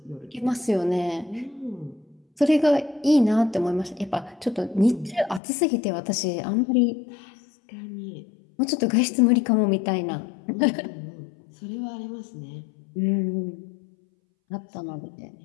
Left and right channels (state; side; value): drops out; right; at 5.4 s